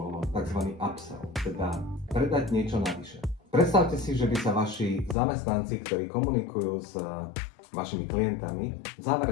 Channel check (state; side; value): drops out; right; at 5.2 s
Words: tzv. Upsell, teda predať niečo navyše. Predstavte si, že by sa vaši zamestnanci, ktorí komunikujú s vašimi klientami, v